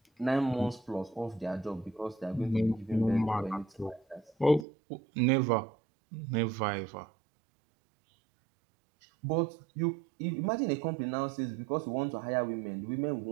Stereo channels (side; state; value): left; drops out; at 4.7 s